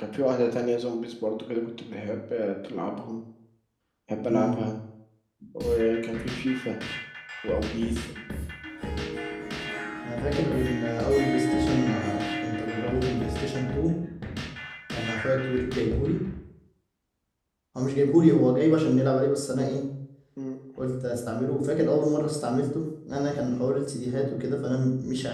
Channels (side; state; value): both; identical; correlation 1.00